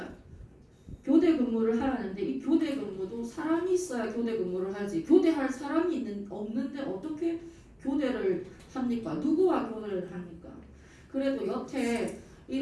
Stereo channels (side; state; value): both; identical; correlation 1.00